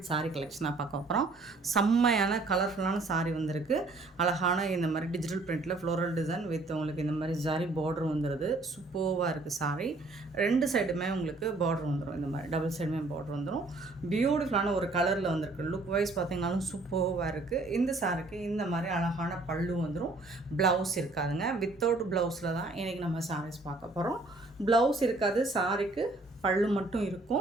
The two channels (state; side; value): quieter; left; 3.2 dB